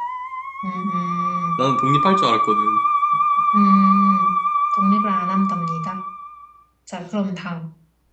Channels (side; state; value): both; identical; correlation 1.00